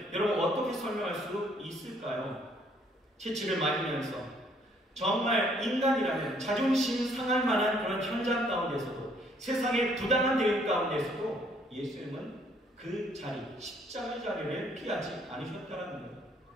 여러분 어떻게 설명할 수 있을까요? 채찍을 맞으면서 정말 인간이라면 자존심 상할 만한 그런 현장 가운데서도 세상의 부당한 대우 가운데서도 예수님은 그 자리, 십자가 자리를 피하지 않으셨다는 거예요.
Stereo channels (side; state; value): both; normal; correlation 0.64